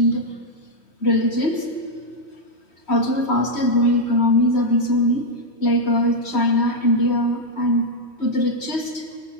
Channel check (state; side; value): late; right; 3.1 ms